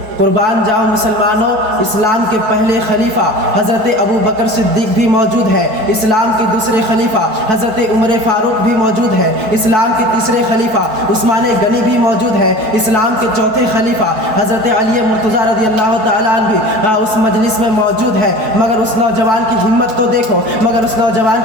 قربان جاؤ مسلمانوں، اسلام کے پہلے خلیفہ حضرت ابو بکر صدیق بھی موجود ہے، اسلام کے دوسرے خلیفہ حضرت عمر فاروق بھی موجود ہے، اسلام کے تیسرے خلیفہ عثمان غنی بھی موجود ہے، اسلام کے چوتھے خلیفہ حضرت علی مرتضیٰ رضی اللہ تعالیٰ عنہ بھی اس مجلس میں موجود ہے۔ مگر اس نوجوان کی ہمت تو دیکھو، مگر اس نوجوان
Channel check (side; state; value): left; late; 4.6 ms